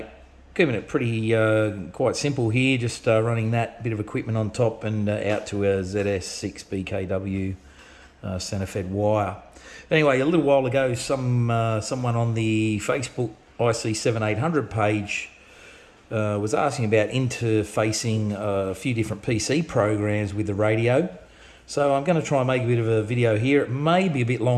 keeping it pretty quite simple here, just running that bit of equipment on top and out to a ZS6 BKW centre-fed wire. Anyway, a little while ago, someone on the Facebook ic7800 page was asking about interfacing a few different PC programs with the radio. So I'm going to try and make a bit of a video here. It may be a bit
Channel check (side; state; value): both; identical; correlation 1.00